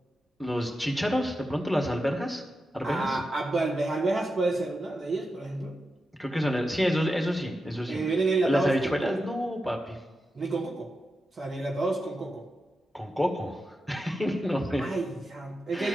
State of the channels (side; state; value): both; normal; correlation 0.89